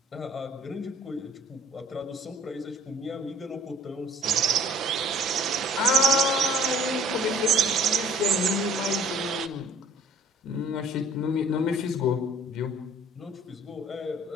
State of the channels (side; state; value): both; normal; correlation 0.52